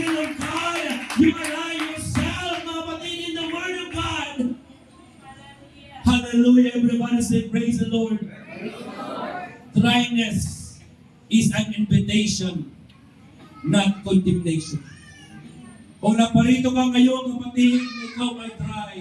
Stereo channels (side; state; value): both; identical; correlation 1.00